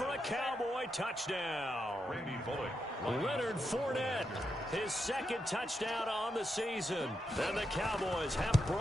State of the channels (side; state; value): both; normal; correlation 0.84